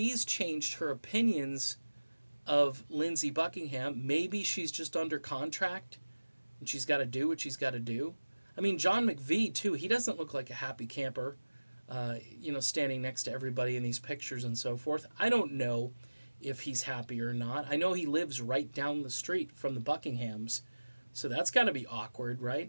changed her opinions of Lindsey Buckingham. Maybe she's just under contract and she's got to do what she's got to do. I mean, John McVie, too, he doesn't look like a happy camper, standing next to everybody in these pictures and so forth. I don't know if he's happy or not. I know he lives right down the street from the Buckinghams, so that's got to be awkward,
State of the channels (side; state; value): both; inverted; correlation -1.00